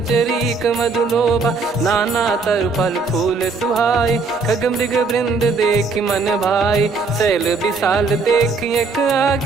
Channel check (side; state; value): left; quieter; 4.2 dB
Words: मधुलोभा। नाना तर फल फूल सुहाए खग मृग वृंद देख मन भाई। शैल विशाल देख एक